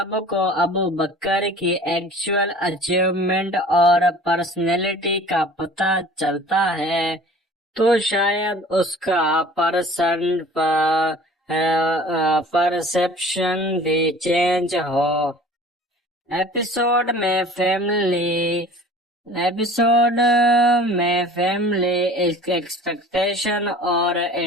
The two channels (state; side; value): normal; both; correlation 0.45